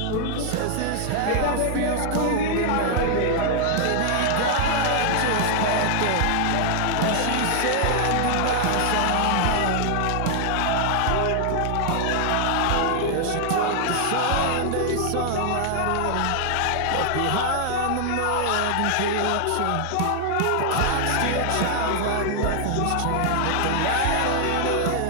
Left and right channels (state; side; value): different; both; correlation 0.00